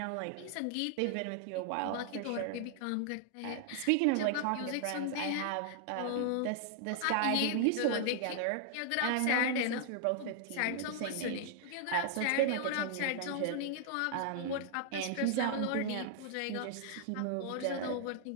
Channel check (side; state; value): both; different; correlation 0.00